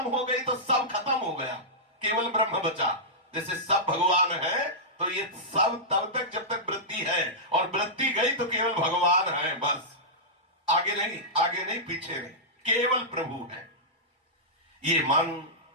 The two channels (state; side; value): normal; both; correlation -0.13